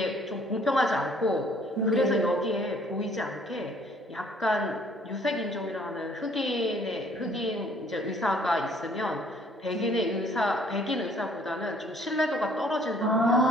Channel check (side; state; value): both; normal; correlation 0.59